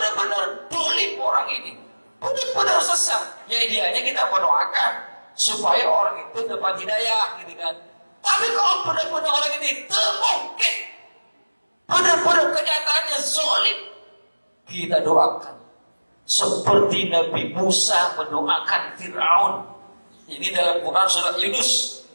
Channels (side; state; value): both; inverted; correlation -1.00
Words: dolim orang ini, benar-benar sesat, ya idealnya kita mendoakan supaya orang itu dapat hidayah, gitu kan. Tapi kalau benar-benar orang ini termungkin, benar-benar kenyataannya zalim, kita doakan seperti Nabi Musa mendoakan Fir'aun. Ini dalam Quran surat Yunus